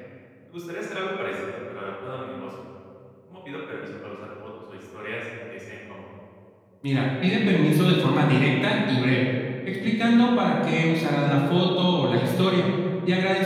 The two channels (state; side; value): identical; both; correlation 1.00